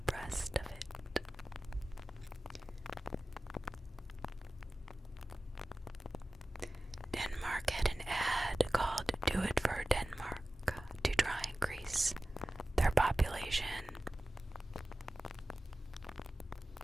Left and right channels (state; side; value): normal; both; correlation 0.96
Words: of it. Denmark had an ad called "Do It for Denmark" to try and increase their population.